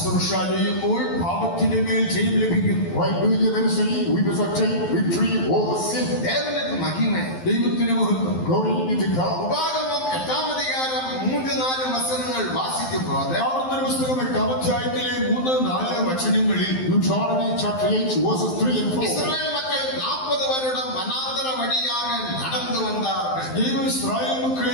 ചെയ്യുമ്പോൾ പാപത്തിന്റെ മേൽ ജയം ലഭിക്കും. While doing the ministry, we must obtain victory over sin. ദേവനുക്ക് മഹിമ. ദൈവത്തിന് മഹത്വം. Glory be to God. ഉപാഗമം 8-ാം അധികാരം 3-4 വചനങ്ങൾ വാസിക്കുമ്പോൾ ആവർത്തന പുസ്തകം 8-ാം അധ്യായത്തിലെ 3-4 വചനങ്ങളിൽ Deuteronomy chapter 8 verses 3 and 4. Israel മക്കൾ 40 வருடம் വനാന്തര വഴിயாக നടന്നു വന്നാர்கள். ദൈവം ഇസ്രായേൽ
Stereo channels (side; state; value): right; late; 12 ms